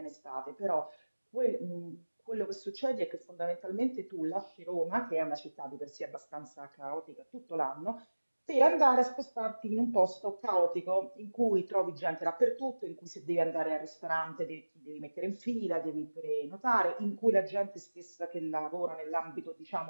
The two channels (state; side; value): inverted; both; correlation -1.00